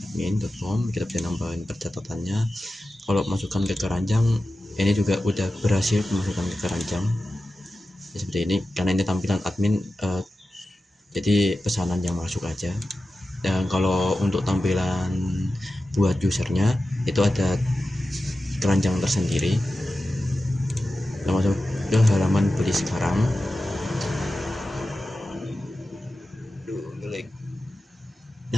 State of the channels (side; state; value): both; normal; correlation 0.93